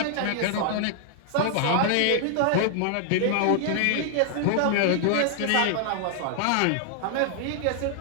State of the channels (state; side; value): different; both; correlation 0.00